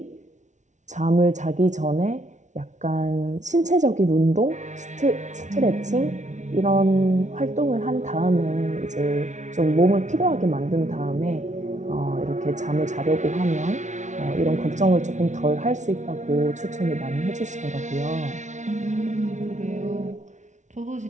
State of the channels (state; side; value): late; left; 0.35 ms